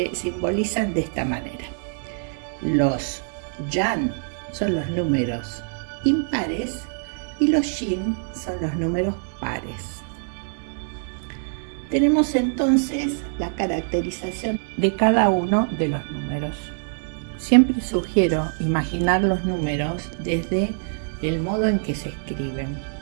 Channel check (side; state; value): left; silent; 62 dB below the other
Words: simbolizan de esta manera. Los yang son los números impares y los yin son los números pares. Tenemos entonces la caracterización de cada uno de los números. Siempre sugiero imaginar los números desde el modo en que se escriben.